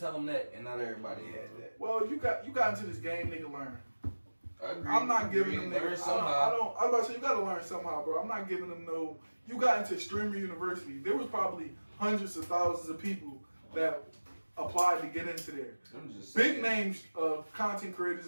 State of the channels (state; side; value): inverted; both; correlation -1.00